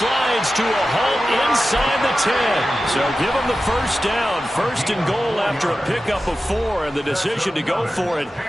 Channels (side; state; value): both; normal; correlation 0.93